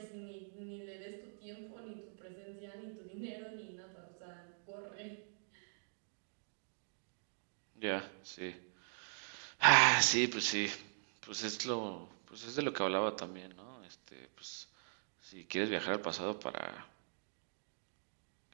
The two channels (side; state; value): left; silent; digital silence